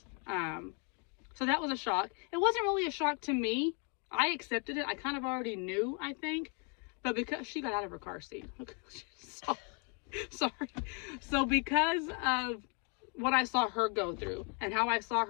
So that was a shock. It wasn't really a shock to me. I accepted it. I kind of already knew, I think. But because she got out of her car seat. Sorry. So because of what I saw her go through and how I saw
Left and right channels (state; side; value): quieter; right; 34.4 dB